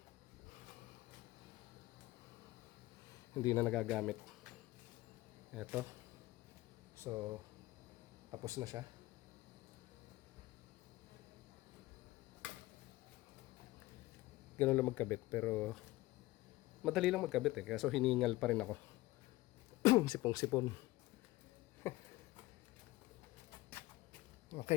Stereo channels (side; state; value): right; quieter; 18.6 dB